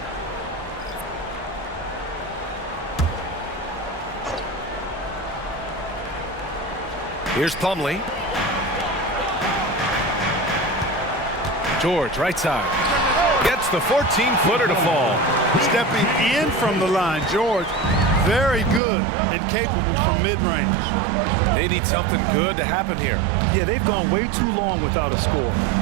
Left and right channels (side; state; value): left; drops out; at 18.8 s